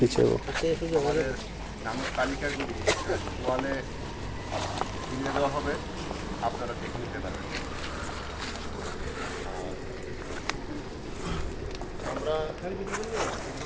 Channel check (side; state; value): both; identical; correlation 1.00